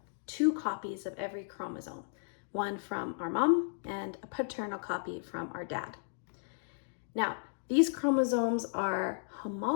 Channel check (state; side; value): silent; right; digital silence